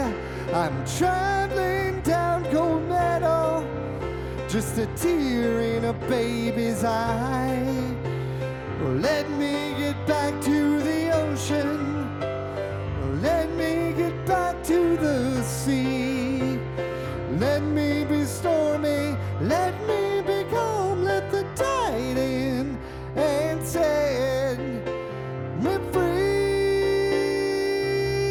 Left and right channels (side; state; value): both; identical; correlation 1.00